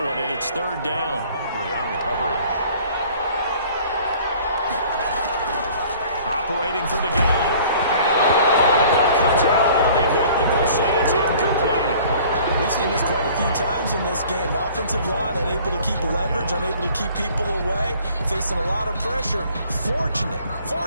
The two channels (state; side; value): inverted; both; correlation -0.51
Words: one, and it's 3rd down. Humphrey on the coverage. Operating from the gun. Allen comes out on the hit, but they'll say it's incomplete. We've seen this quite a few times in this game. Offensive line unable to keep leverage, unable to keep people away, facing a lot of pressure.